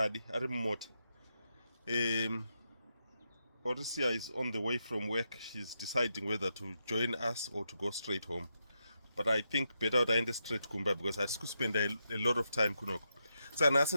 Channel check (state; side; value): inverted; both; correlation -0.84